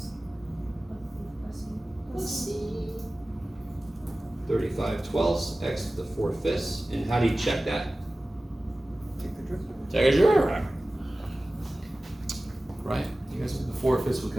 Let's see. 35/12 x to the 4/5. And how do you check that? Take the derivative. Take a derivative. Right? You guys, the 4/5 would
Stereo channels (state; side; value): normal; both; correlation 0.97